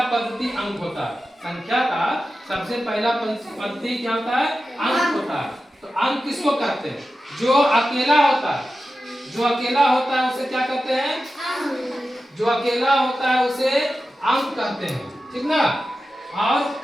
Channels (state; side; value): normal; both; correlation 0.93